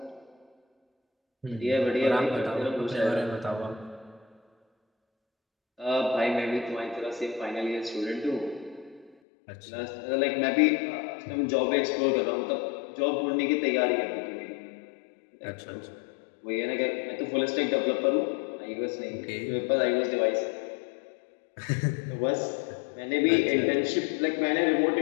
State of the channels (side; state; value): right; drops out; at 9.2 s